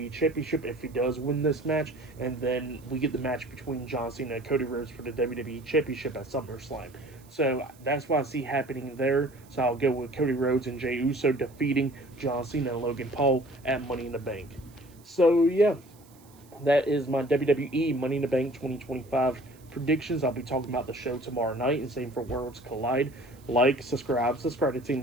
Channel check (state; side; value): noise; right; hiss, 27 dB below the sound